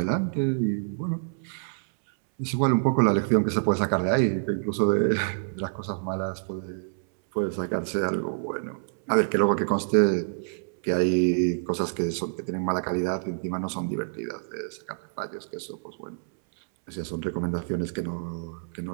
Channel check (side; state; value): left; silent; 60 dB below the other